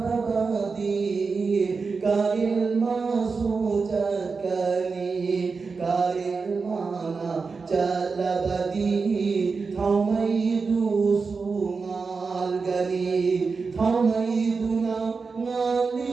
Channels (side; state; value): left; quieter; 4.7 dB